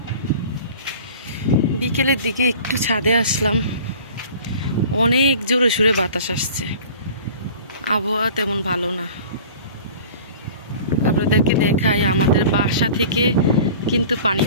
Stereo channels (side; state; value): both; inverted; correlation -0.43